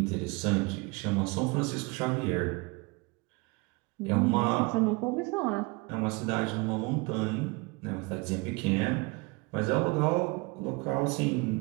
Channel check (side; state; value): left; quieter; 27.2 dB